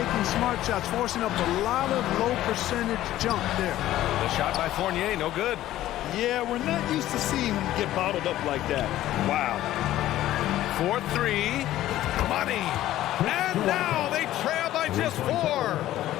smart shots, forcing up a lot of low percentage jump there. The shot by Fournier, no good. Yeah, we're not used to seeing him get bottled up like that. Wow. 4-3. Money. And now they trail by just 4.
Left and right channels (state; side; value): quieter; right; 14.1 dB